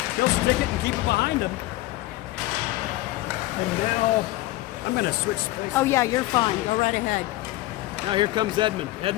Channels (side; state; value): right; quieter; 17.7 dB